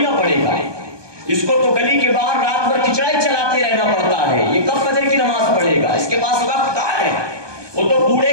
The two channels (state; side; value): late; left; 1.2 ms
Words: پڑھے گا۔ اس کو تو گلی کے باہر رات بھر کھچڑا ہی چلاتے رہنا پڑتا ہے، یہ کب فجر کی نماز پڑھے گا؟ اس کے پاس وقت کہاں ہے؟ وہ تو بوڑھے